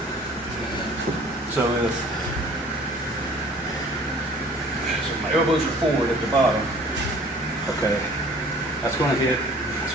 So my elbows are forward at the bottom. Okay, that's gonna hit, that's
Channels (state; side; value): normal; both; correlation 0.51